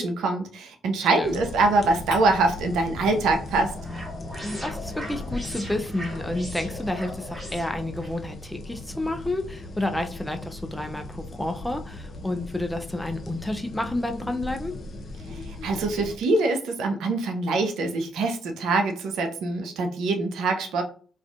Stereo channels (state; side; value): normal; both; correlation 0.73